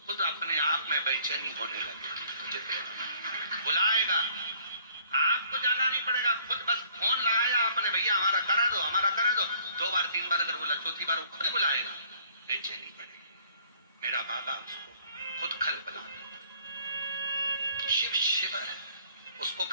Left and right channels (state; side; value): inverted; both; correlation -0.58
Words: खुद अपने आप में बेचैनी होने लगे, बुलाएगा, आपको जाना नहीं पड़ेगा, खुद बस फोन लगाया आपने, भैया हमारा करा दो, हमारा करा दो, 2 बार 3 बार अगर बोला, चौथी बार वो खुद बुलाएगा, बेचैनी पड़ेगी। मेरा बाबा उसको खुद खल बुला देता। शिव शिव है, उसको